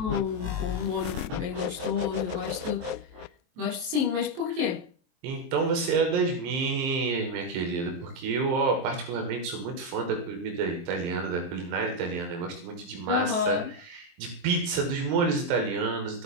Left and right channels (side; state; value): left; late; 23 ms